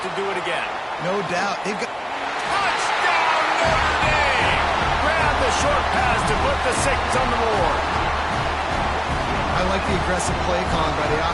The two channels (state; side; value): identical; both; correlation 1.00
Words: to do it again. No doubt. They've got... Touchdown, Notre Dame! Grab the short pass to put the 6 on the board. I like the aggressive play calling by the